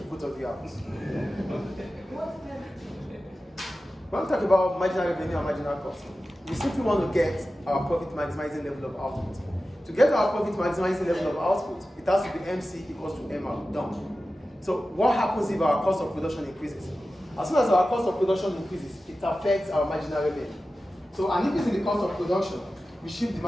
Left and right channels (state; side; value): normal; both; correlation 0.94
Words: both of you out. When we talk about marginal revenue and marginal cost, we simply want to get our profit maximizing level of output. To get our profit maximizing level of output, it has to be MC equals to MR, done. So what happens if our cost of production increases? As soon as our cost of production increases, it affects our marginal revenue. So an increase in the cost of production, we shift the